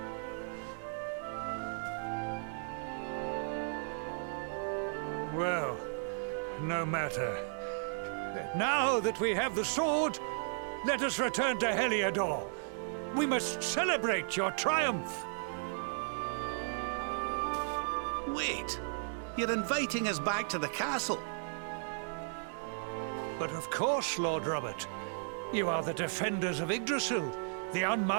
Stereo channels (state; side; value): silent; left; digital silence